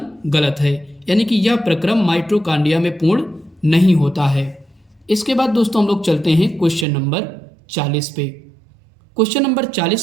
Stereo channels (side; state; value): left; drops out; at 6.9 s